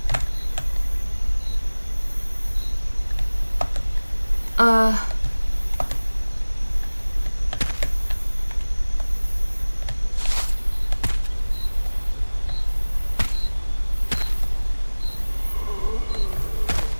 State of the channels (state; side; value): inverted; both; correlation -1.00